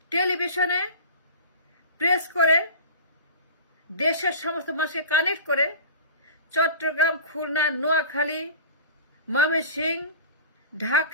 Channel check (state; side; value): inverted; both; correlation -0.36